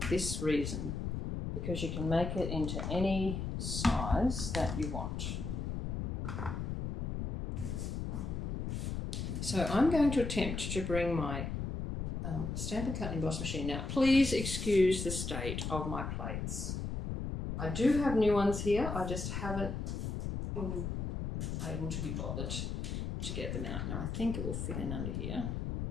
this reason, because you can make it into any size that you want. So I'm going to attempt to bring my Stampin' Cut and Emboss machine. Now, please excuse the state of my plates. I do have new ones here. I just haven't been able to be bothered to get them out. Now, I think it will fit in under here.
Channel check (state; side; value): noise; left; rumble, 3 dB below the sound